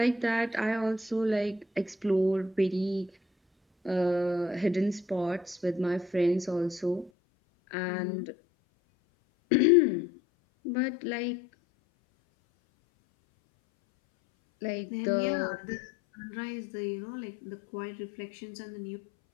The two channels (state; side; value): drops out; right; at 7.1 s